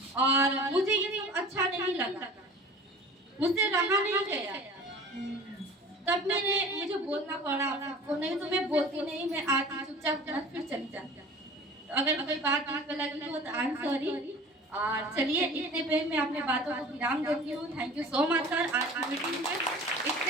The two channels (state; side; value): normal; both; correlation 0.41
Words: और मुझे ये सब अच्छा नहीं लगा, मुझसे रहा नहीं गया, तब मुझे बोलना पड़ा आपको, नहीं तो मैं बोलती नहीं, मैं आती चुपचाप फिर चली जाती। तो अगर कोई बात दिल पे लगी हो तो आई एम सॉरी। और चलिए, इतने पे मैं अपने बातों को विराम देती हूँ। Thank you so much sir, आज की मीटिंग में